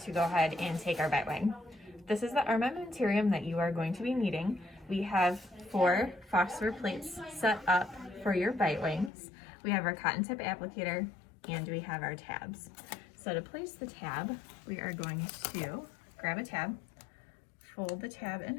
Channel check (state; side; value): drops out; right; at 9.1 s